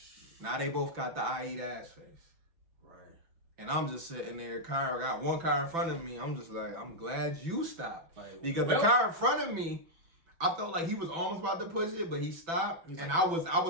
Now they both got the I eat ass face. Right. And I'm just sitting there, I got one car in front of me. I'm just like, I'm glad you stopped. Because the car in front of me, I felt like he was almost about to push it, but he stopped. And I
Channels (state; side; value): late; left; 6.0 ms